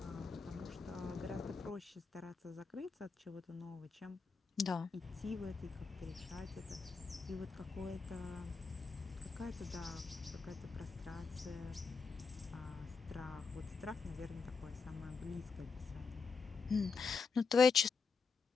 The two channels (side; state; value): right; quieter; 5.0 dB